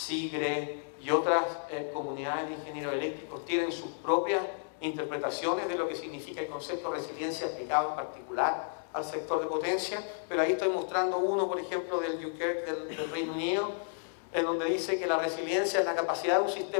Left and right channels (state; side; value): silent; right; digital silence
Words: y otras comunidades de ingenieros eléctricos tienen sus propias interpretaciones de lo que significa el concepto de resiliencia aplicado en particular al sector de potencia, pero ahí estoy mostrando uno, por ejemplo, del Dunkirk del Reino Unido, en donde dice que la resiliencia es la capacidad de un